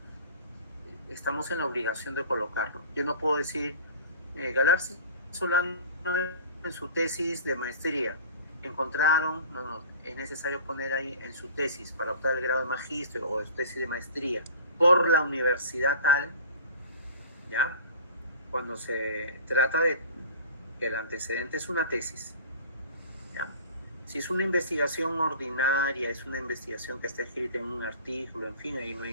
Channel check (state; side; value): inverted; both; correlation -0.42